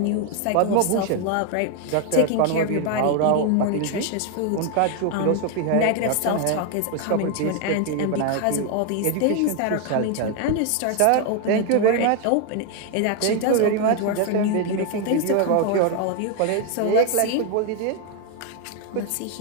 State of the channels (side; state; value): both; different; correlation 0.01